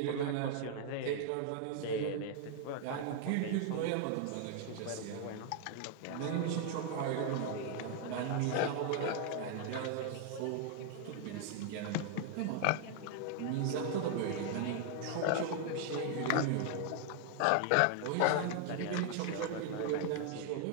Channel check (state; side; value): different; both; correlation 0.00